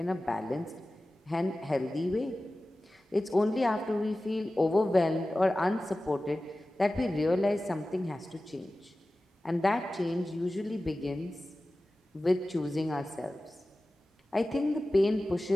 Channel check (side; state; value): both; normal; correlation 0.96